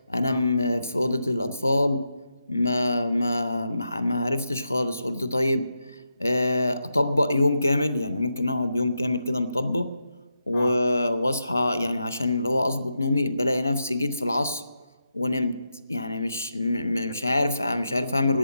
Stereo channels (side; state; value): both; inverted; correlation -0.85